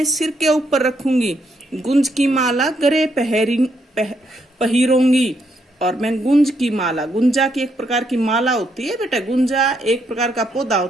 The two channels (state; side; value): normal; both; correlation 0.76